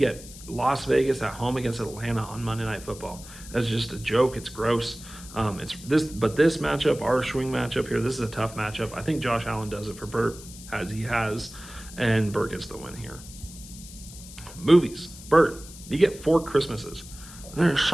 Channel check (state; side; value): noise; left; hiss, 16 dB below the sound